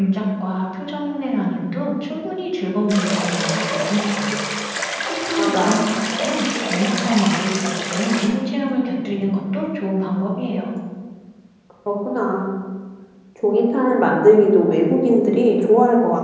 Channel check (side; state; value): both; identical; correlation 1.00